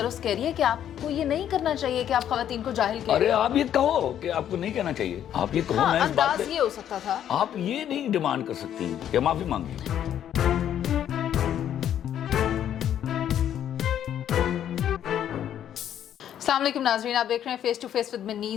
کہہ رہی ہے کہ آپ کو یہ نہیں کرنا چاہیے کہ آپ خواتین کو جاہل کہیں. ارے آپ یہ کہو کہ آپ کو نہیں کہنا چاہیے, آپ یہ کہو. ہاں, انداز یہ ہو سکتا تھا. آپ یہ نہیں ڈیمانڈ کر سکتی کہ معافی مانگی. السلام علیکم ناظرین, آپ دیکھ رہے ہیں face to face with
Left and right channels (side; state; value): right; quieter; 10.2 dB